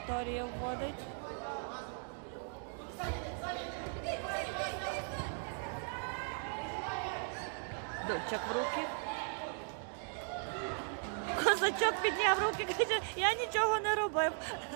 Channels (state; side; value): silent; left; 53 dB below the other